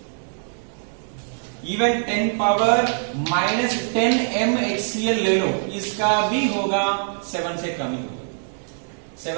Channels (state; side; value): silent; left; digital silence